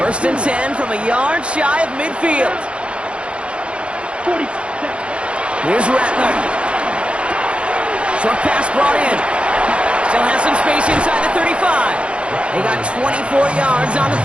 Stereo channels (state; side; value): late; left; 0.058 ms